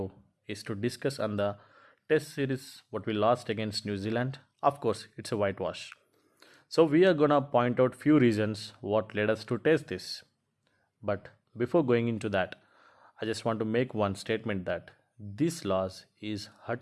is to discuss on the test series what we lost against New Zealand. Of course, it's a whitewash. So we are gonna point out few reasons what led us to test this. But before going into that, I just want to make one statement that this loss is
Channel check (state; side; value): identical; both; correlation 1.00